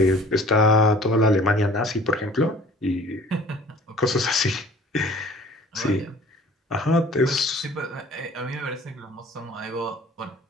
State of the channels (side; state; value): both; normal; correlation 0.49